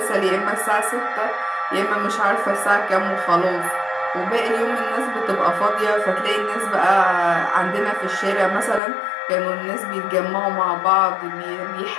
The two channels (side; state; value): right; drops out; at 8.8 s